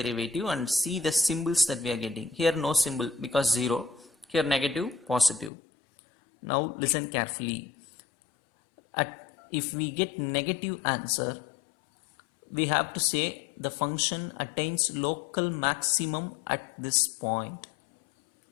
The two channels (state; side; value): drops out; right; at 5.5 s